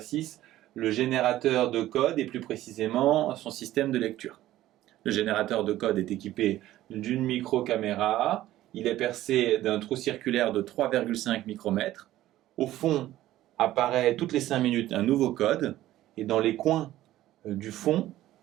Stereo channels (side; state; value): left; quieter; 14.5 dB